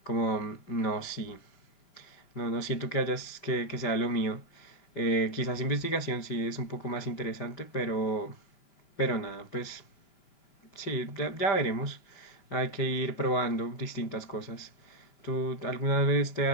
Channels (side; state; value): right; late; 5.1 ms